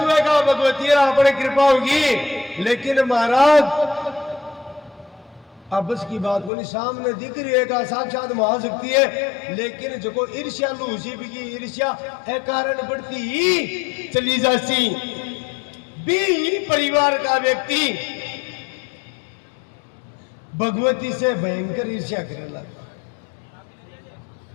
का भगवती अपने कृपा होगी। लेकिन महाराज अब की बात को नहीं, सामने दिख रही है का साक्षात महाशक्ति है, लेकिन जो को ईर्ष्या लूसी भी की ईर्ष्या है कारण बढ़ती ही चली जाती। भी परिवार का व्यक्ति भगवती से भयंकर ईर्ष्या करने लगा।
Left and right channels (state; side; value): drops out; right; at 6.5 s